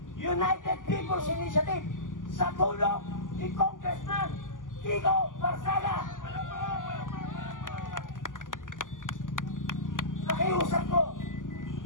United People's Initiative sa tulong ni Congressman Kiko Barsaga. Nakiusap ko,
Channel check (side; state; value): right; late; 0.88 ms